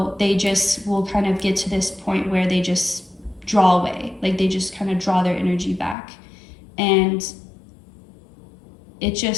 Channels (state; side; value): drops out; right; at 6.0 s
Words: they just will kind of get to this point where they just draw away, like they just kind of draw their energy back. And it